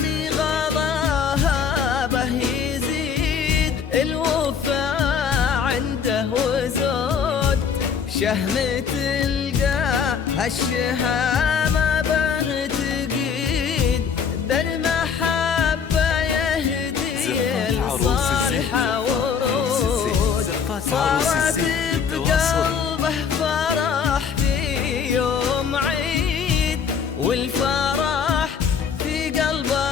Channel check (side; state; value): right; quieter; 6.7 dB